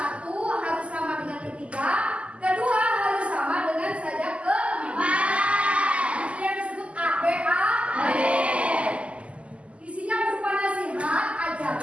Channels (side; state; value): left; late; 0.059 ms